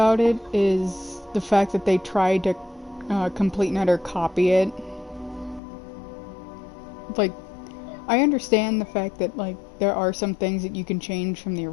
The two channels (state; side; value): drops out; right; at 5.6 s